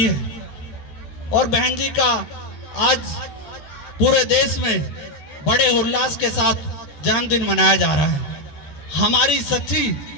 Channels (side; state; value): right; late; 13 ms